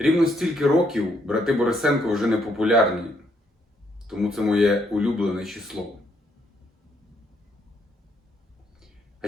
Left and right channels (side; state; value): both; normal; correlation 0.72